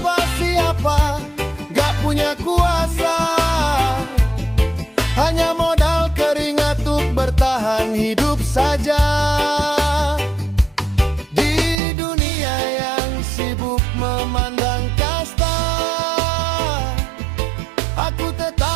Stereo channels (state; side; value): drops out; left; at 11.8 s